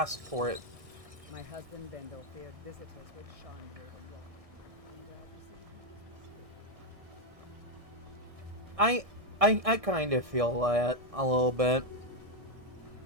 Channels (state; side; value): late; left; 1.6 ms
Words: for it. My husband Bendel feared visitors would shine through the rock. I'm glad to see he was mistaken. I kind of feel that a little bit.